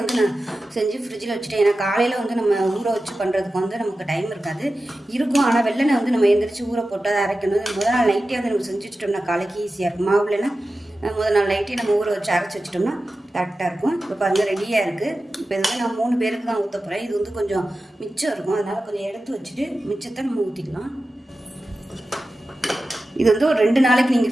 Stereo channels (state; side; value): normal; both; correlation 0.94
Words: நான் செஞ்சு ஃப்ரிட்ஜில் வச்சுட்டேன். ஏன்னா காலையில் நம்ம ஊற வச்சு பண்ணுறதுக்கு நமக்கு டைம் இருக்காது இருக்கும். ஆனால் வெள்ளனை நம்ம எந்திரிச்சு ஊற போட்டு அதை அரைக்கணும். முதல் நாள் நைட்டே நம்ம செஞ்சு வச்சுட்டோம்னா காலைக்கு ஈஸியாக இருக்கும். மாவு இல்லைன்னா முதல் நாள் நைட்டே நம்ம ஊற வச்சு அரைச்சி வச்சிட்டோம்னா கரெக்டாக இருக்கும். இப்போ பாருங்கள் ரெடியாக இருக்குது. இப்போ நான் 3 பேருக்கு தான் ஊற்ற போகிறேன். இது கொஞ்சம் மிச்சம் இருக்கும், அதனால் கொஞ்சம் எடுத்து வச்சுட்டு மிச்சத்தை நம்ம ஊற்றிக்கலாம். இது ஒரு 2 நாளைக்கு